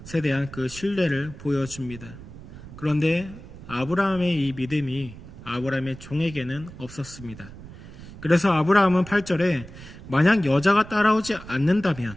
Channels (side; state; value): right; noise; rumble, 16 dB below the sound